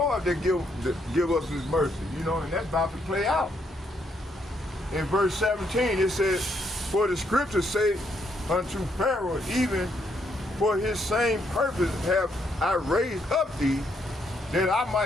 that give us his mercy, you know, and that's about to play out. In verse 17, it says, for the scriptures say unto Pharaoh, even for his same purpose have I raised up thee, that I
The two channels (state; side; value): normal; both; correlation 0.74